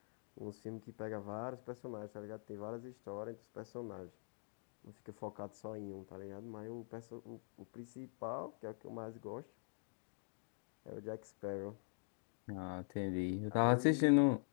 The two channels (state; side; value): silent; right; digital silence